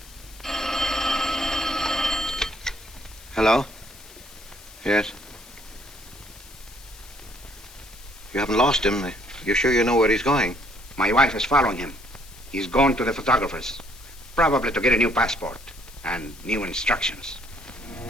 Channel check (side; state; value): left; noise; hiss, 20 dB below the sound